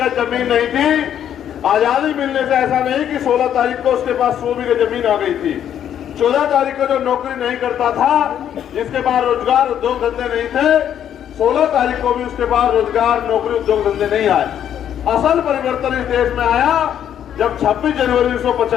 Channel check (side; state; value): right; quieter; 9.8 dB